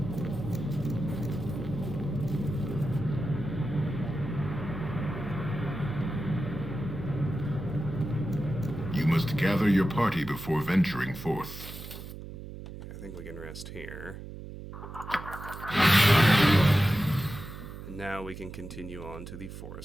You must gather your party before venturing forth. I think we can rest here. And now we can continue on to the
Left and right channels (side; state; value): right; noise; hum, 11 dB below the sound